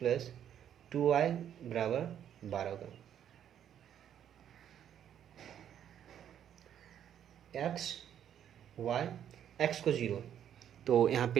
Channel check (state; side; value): quieter; left; 9.8 dB